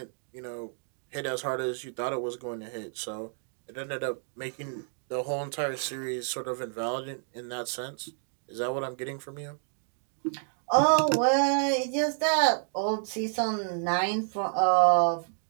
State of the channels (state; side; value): silent; left; 58 dB below the other